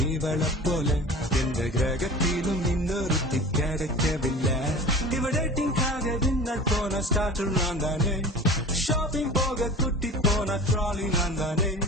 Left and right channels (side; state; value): both; normal; correlation 0.37